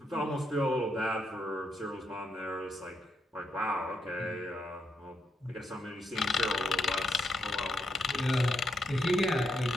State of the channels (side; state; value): both; normal; correlation 0.80